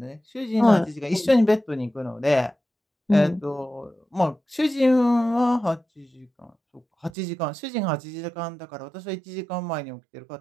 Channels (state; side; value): drops out; left; at 7.1 s